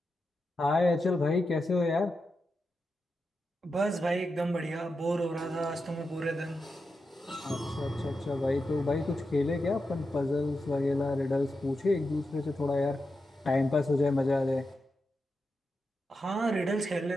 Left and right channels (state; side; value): normal; both; correlation 0.88